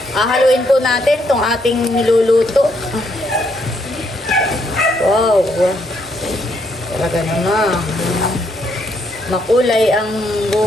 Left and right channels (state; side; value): normal; both; correlation 0.73